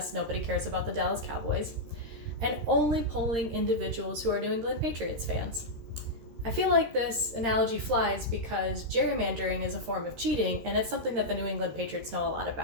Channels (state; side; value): late; left; 13 ms